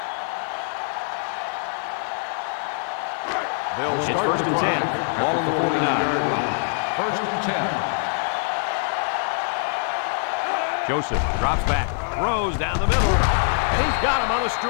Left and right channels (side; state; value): right; silent; digital silence